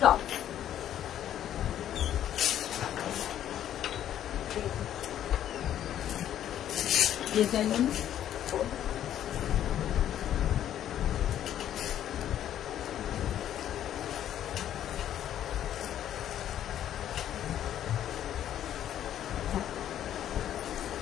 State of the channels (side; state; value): right; quieter; 11.0 dB